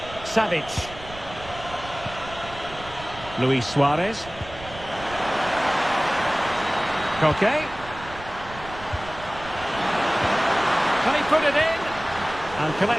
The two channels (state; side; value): noise; right; rumble, 15 dB below the sound